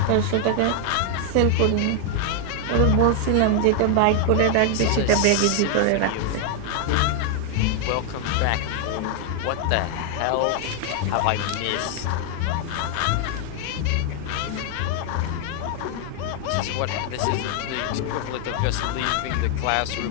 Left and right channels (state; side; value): different; both; correlation 0.00